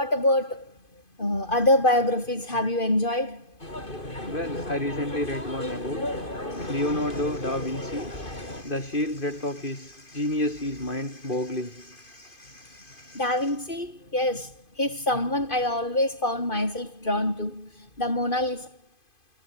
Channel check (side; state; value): right; late; 2.5 ms